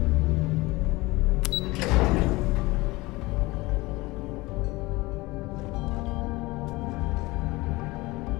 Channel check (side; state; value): right; quieter; 21.5 dB